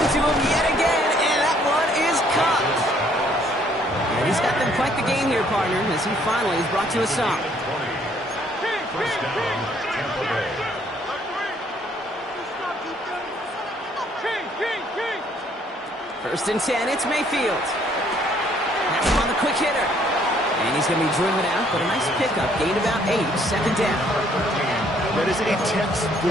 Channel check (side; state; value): both; normal; correlation 0.64